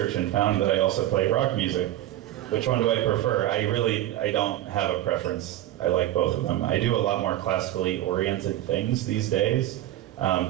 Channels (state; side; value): quieter; left; 13.9 dB